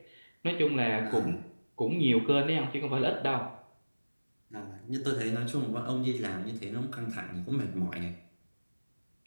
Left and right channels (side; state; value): both; inverted; correlation -1.00